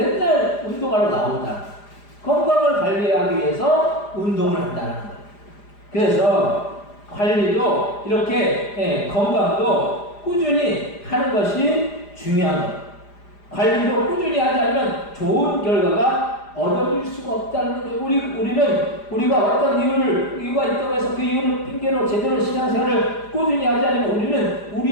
운동하러 나온다. 건강을 관리하기 위해서 운동을 한다는 거예요. 그래서 관리도 이렇게 건강도 꾸준히 하는 것이 중요한 거예요. 관리도 꾸준히 하지 않으면 좋은 결과가 얻어질 수가 없다는 거예요. 우리가 어떤 이유가 있다고 해서 그 이유를 핑계로 제대로 신앙생활을 꾸준히 하지 않으면 우리는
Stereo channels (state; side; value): late; right; 4.9 ms